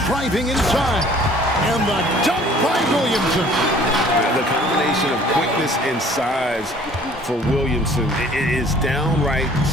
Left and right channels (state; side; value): normal; both; correlation 0.54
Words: Driving inside. And the dunk by Williamson. The combination of quickness and size for Williamson is downright